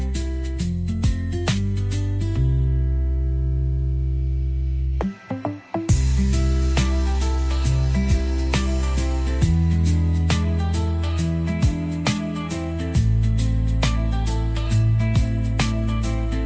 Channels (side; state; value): both; identical; correlation 1.00